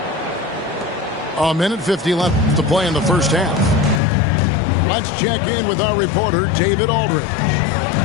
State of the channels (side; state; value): right; drops out; at 4.0 s